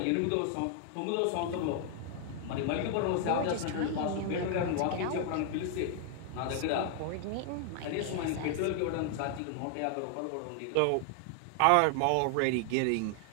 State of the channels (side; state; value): both; different; correlation 0.00